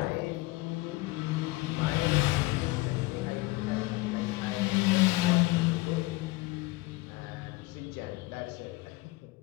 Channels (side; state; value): right; quieter; 21.5 dB